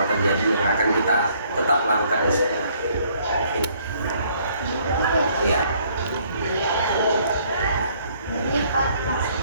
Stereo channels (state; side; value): inverted; both; correlation -0.64